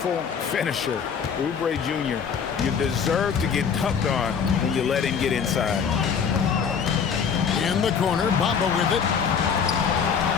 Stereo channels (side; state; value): right; quieter; 6.7 dB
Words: finisher, Oubre Jr. You deserve to get dunked on when you let him get inside. In the corner, Bamba with it.